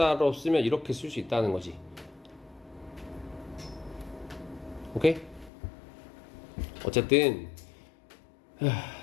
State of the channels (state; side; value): drops out; right; at 5.5 s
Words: 쓰면 이렇게 쓸 수 있다는 거지. 오케이? 어쨌든